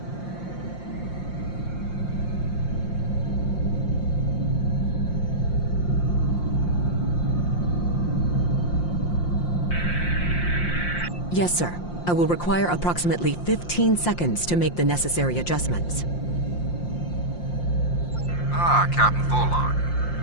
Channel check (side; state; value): right; late; 5.7 ms